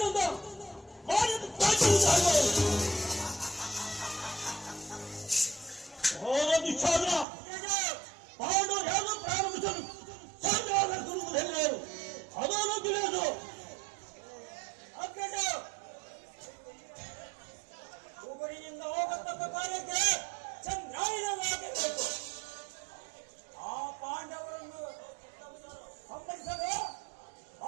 ಮಾಡಿದ್ದು ದುಶ್ಯಾಸನ ಪಾಂಡು ಯಾರು ಪ್ರಾರಂಭಿಸಲು ಸಂಗ್ರಾಮ ಹೆಣ್ಣರು ಅದನ್ನು ತಿಳಿಯೋದು. ಊರಿನಿಂದ ಹೋಗತಕ್ಕ ಕಾರ್ಯಕ್ಕೆ ಚಂದ್ರಾಯಣವಾಗಬೇಕು. ಆ ಪಾಂಡವರನ್ನು ಸಂಹರಿಸಲು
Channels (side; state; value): left; drops out; at 7.2 s